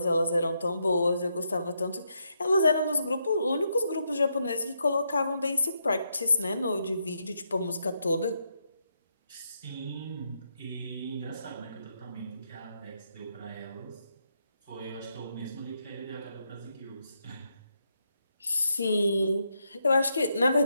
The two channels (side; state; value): both; inverted; correlation -0.80